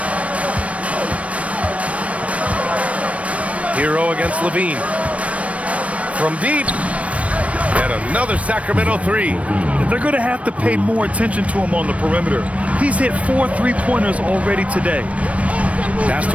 Hero against Levine. From deep. And another Sacramento 3. They're going to have to pay more attention to him on the perimeter. He's hit 4 3-pointers already today. Pass to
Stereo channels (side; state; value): left; late; 0.064 ms